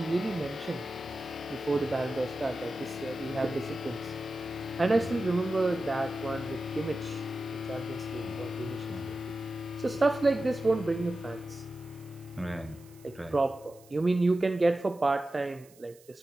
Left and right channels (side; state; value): right; noise; hiss, 26 dB below the sound